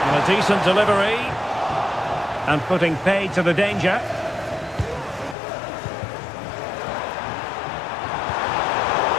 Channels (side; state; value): right; drops out; at 5.4 s